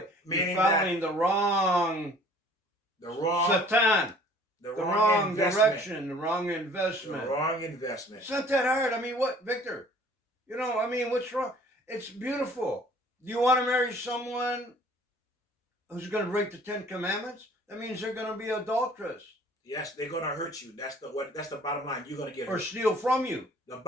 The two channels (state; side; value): normal; both; correlation 0.53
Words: Meaning you're following the wrong Satan. The wrong direction, the wrong investment. The wrong investment. It's not that hard. I mean, what, Victor? What's wrong? It's beautiful. Do you want to marry someone who's going to break the 10 Commandments? That means they're going to be adulterous. Yes, they're going to hurt you. That's the bottom line. You're going to get hurt. Or steal from you. The